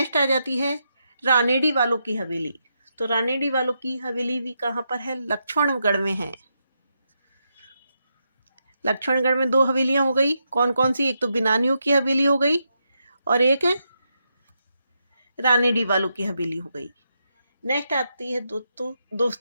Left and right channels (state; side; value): inverted; both; correlation -0.83